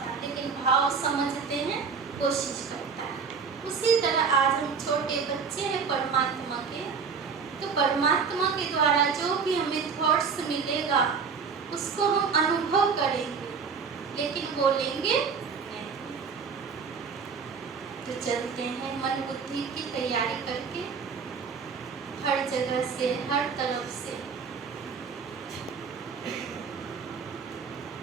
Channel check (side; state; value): left; quieter; 5.7 dB